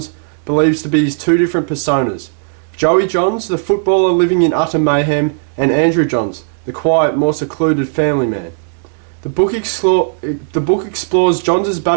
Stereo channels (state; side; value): silent; left; digital silence